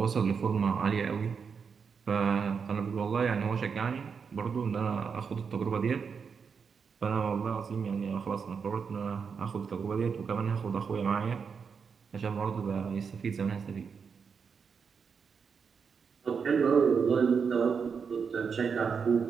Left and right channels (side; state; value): left; quieter; 6.0 dB